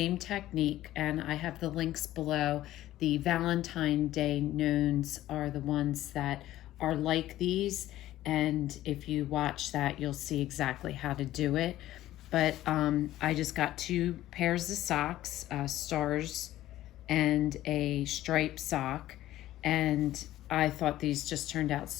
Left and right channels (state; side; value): quieter; right; 14.4 dB